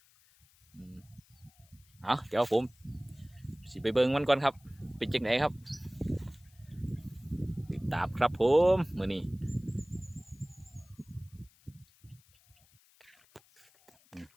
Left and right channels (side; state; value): left; noise; hiss, 30 dB below the sound